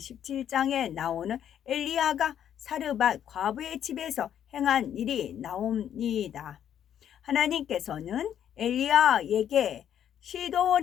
나오는 엘리야가 사르밧 과부의 집에서 행한 일이 나옵니다. 하나님께서는 엘리야에게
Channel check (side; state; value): right; quieter; 9.8 dB